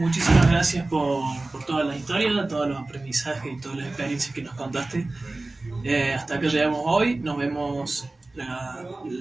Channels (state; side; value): quieter; left; 3.0 dB